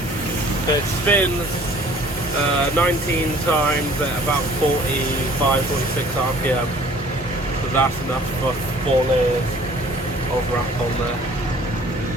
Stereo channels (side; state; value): both; normal; correlation 0.52